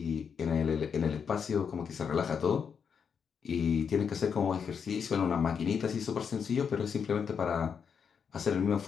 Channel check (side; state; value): right; quieter; 6.7 dB